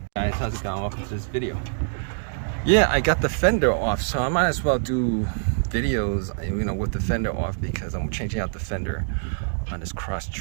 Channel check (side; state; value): left; silent; digital silence